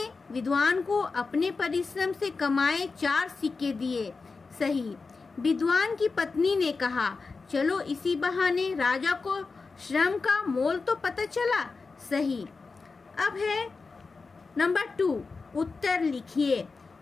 विद्वान को अपने परिश्रम से कमाए 4 सिक्के दिए? सही। विद्वान की पत्नी ने कहा, चलो इसी बहाने राजा को श्रम का मोल तो पता चला? सही। अब है नंबर 2, उत्तर लिखिए।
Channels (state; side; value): quieter; right; 4.3 dB